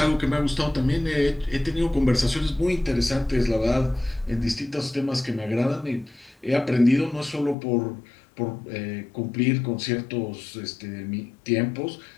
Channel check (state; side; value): drops out; right; at 7.6 s